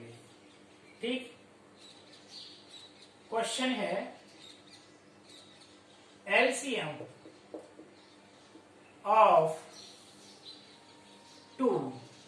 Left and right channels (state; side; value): identical; both; correlation 1.00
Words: ठीक। क्वेश्चन है एलसीएम ऑफ 2